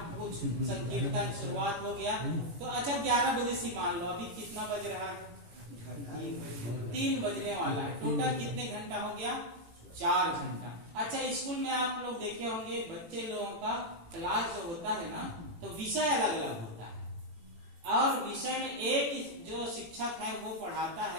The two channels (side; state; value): left; late; 18 ms